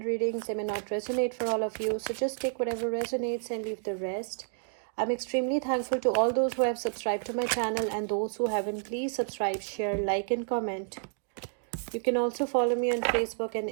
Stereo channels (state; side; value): silent; left; digital silence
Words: readings. They may not resonate for all of you, so just take whatever resonates and leave the rest. I'm extremely thankful to all those who have subscribed to my channel and those who haven't. Please subscribe, share, like and comment. You can also follow me on Facebook and